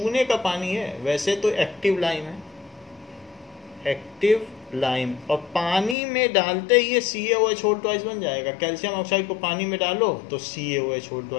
का पानी है, वैसे तो एक्टिव लाइम है, एक्टिव लाइम, और पानी में डालते ही ये CaOH2 बन जाएगा। कैल्शियम ऑक्साइड को पानी में डालो तो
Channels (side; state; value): right; drops out; at 6.0 s